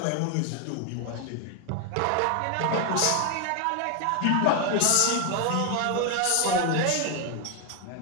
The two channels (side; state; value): both; different; correlation 0.01